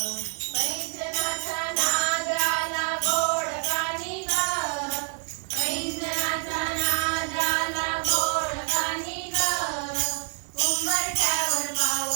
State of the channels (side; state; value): left; quieter; 39.9 dB